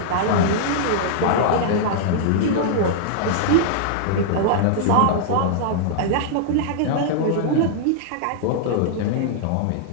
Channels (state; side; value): different; both; correlation -0.01